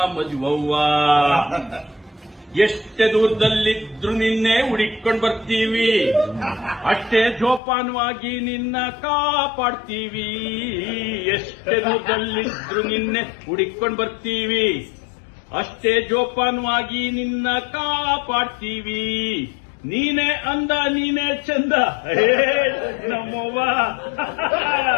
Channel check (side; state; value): right; drops out; at 7.6 s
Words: ಮಜ್ವವ್ವ. ಎಷ್ಟೇ ದೂರದಲ್ಲಿದ್ರು ನಿನ್ನೆ ಹುಡುಕೊಂಡು ಬರ್ತೀವಿ, ಅಷ್ಟೇ ಜೋಪಾನವಾಗಿ ನಿನ್ನ ಕಾಪಾಡ್ತೀವಿ. ಎಷ್ಟೇ ದೂರದಲ್ಲಿದ್ರು ನಿನ್ನೆ ಹುಡುಕೊಂಡು ಬರ್ತೀವಿ, ಅಷ್ಟೇ ಜೋಪಾನವಾಗಿ ನಿನ್ನ ಕಾಪಾಡ್ತೀವಿ. ನೀನೇ ಅಂದ ನೀನೇ ಚಂದ ನಮ್ಮವ್ವ,